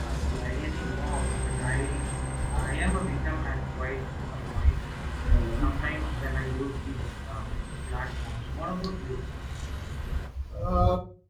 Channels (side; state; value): both; identical; correlation 1.00